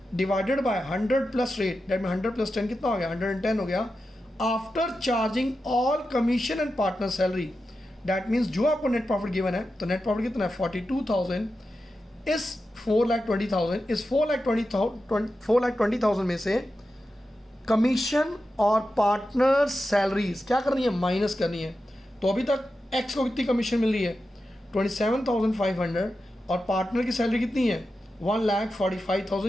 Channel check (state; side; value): normal; both; correlation 0.91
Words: divided bye 100 plus rate, that में 100 प्लस 10 कितना हो गया, 110 हो गया। After charging all commission and partner salary, that means जो आपको नेट प्रॉफिट गिवन है, तो नेट प्रॉफिट कितना है 42,000। इस 4,20,000, इस 4,20,000 में से कमीशन और पार्टनर सैलरीज क्या करनी है, माइनस करनी है। तो अभी तक एक्स को कितनी कमीशन मिल रही है 27,500 और पार्टनर की सैलरी कितनी है 1,45,000,